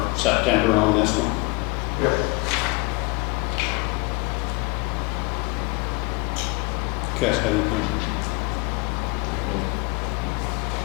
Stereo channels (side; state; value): right; quieter; 26.6 dB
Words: September on this one. Yep. You guys got anything?